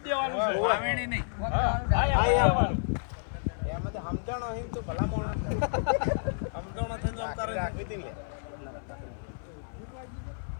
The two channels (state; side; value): silent; right; 58 dB below the other